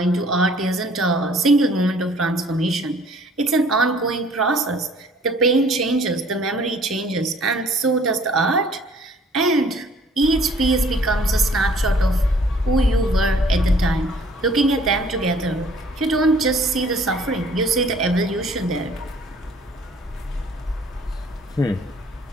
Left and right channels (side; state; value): both; normal; correlation 0.56